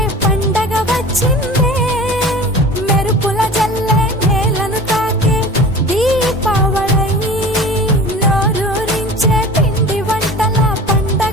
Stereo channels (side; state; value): both; normal; correlation 0.39